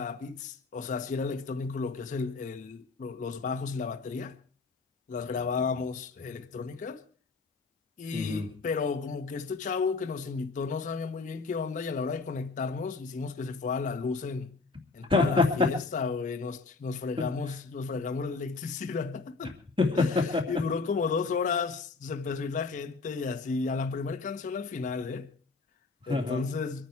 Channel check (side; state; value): right; quieter; 4.1 dB